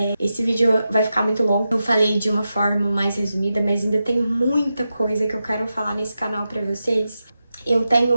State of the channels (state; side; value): inverted; both; correlation -0.90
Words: Esse vídeo vai ficar muito longo. Eu falei de uma forma mais resumida, mas ainda tem muita coisa que eu quero falar nesse canal pra vocês. Eu